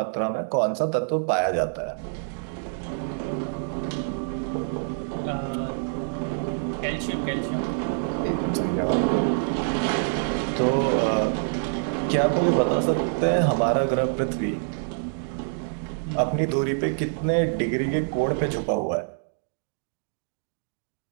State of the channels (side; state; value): left; silent; digital silence